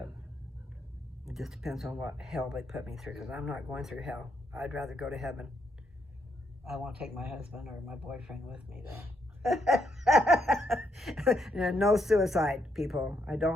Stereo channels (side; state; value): both; normal; correlation 0.77